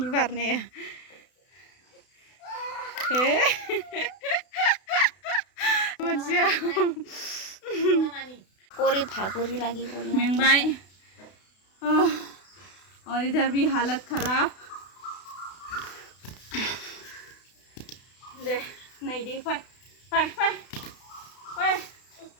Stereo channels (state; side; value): late; right; 32 ms